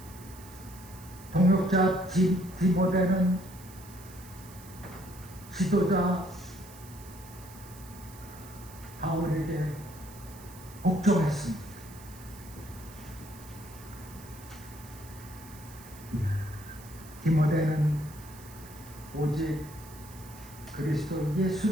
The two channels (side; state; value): right; noise; hiss, 19 dB below the sound